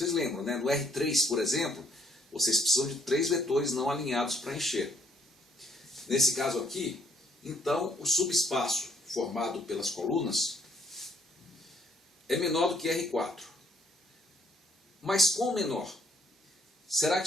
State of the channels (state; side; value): normal; both; correlation 0.65